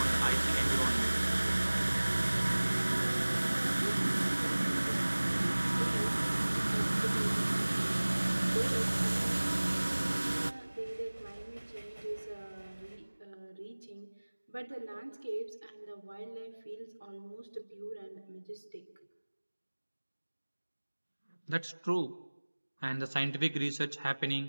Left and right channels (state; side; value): inverted; both; correlation -1.00